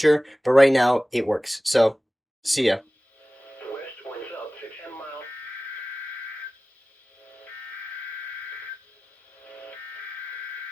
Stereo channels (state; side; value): normal; both; correlation 0.97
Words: but right now it works. So, see ya. West winds up to 10 miles.